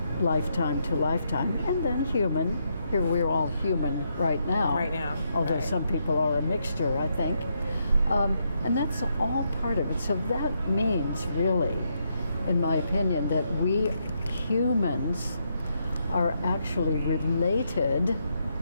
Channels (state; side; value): inverted; both; correlation -0.79